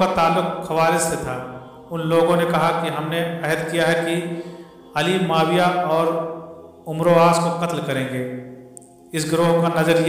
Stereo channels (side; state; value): both; identical; correlation 1.00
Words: ताल्लुक खवारिज से था। उन लोगों ने कहा कि हमने अहद किया है कि अली, माविया और उमरो आस को कत्ल करेंगे। इस गिरोह का नज़र